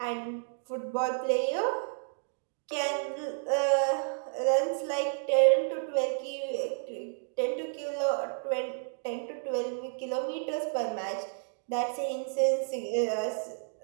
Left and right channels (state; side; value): silent; left; digital silence